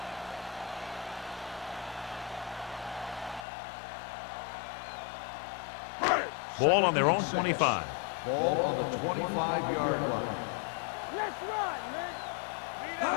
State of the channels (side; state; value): right; drops out; at 3.5 s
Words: Ball on their own 25. Ball on the 25-yard line. Let's run,